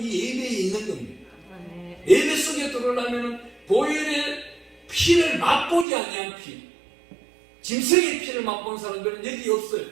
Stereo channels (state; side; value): drops out; left; at 5.9 s